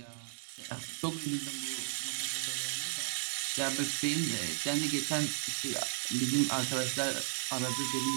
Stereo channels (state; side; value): silent; left; 55 dB below the other